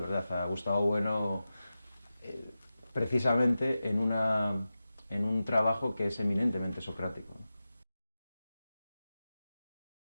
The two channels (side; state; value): both; inverted; correlation -0.93